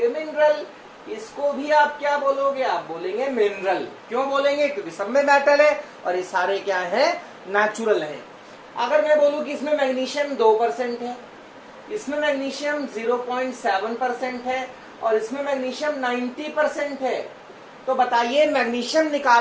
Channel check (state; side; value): identical; both; correlation 1.00